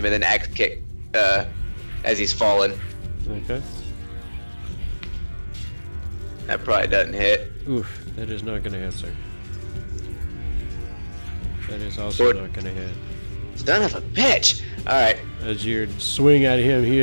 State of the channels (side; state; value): both; inverted; correlation -1.00